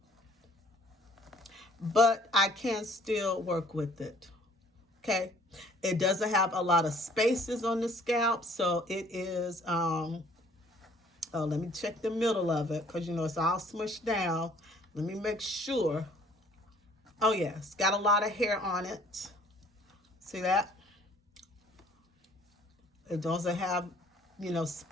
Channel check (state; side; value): normal; both; correlation 0.57